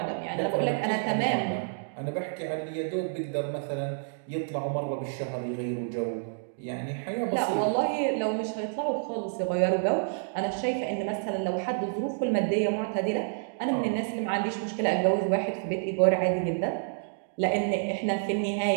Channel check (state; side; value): silent; left; digital silence